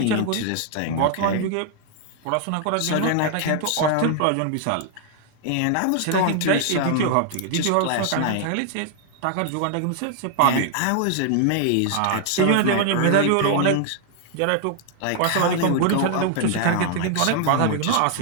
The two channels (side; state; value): both; different; correlation 0.00